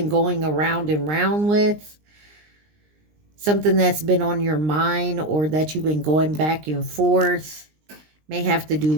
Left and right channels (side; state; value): left; late; 20 ms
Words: going around and round with. Something that's been on your mind or that you've been going back and forth. May have to do